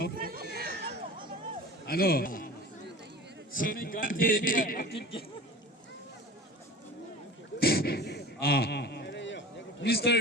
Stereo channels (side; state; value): both; normal; correlation 0.38